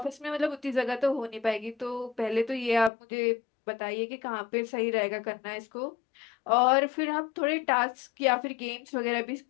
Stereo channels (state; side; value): drops out; right; at 2.9 s